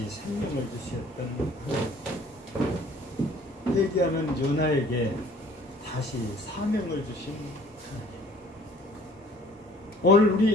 생명을 주셨던 회개하는 요나에게 다시 사명을 주신 하나님. 오늘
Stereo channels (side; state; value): both; normal; correlation 0.54